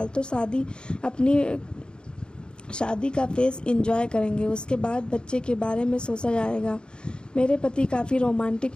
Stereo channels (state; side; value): late; right; 0.050 ms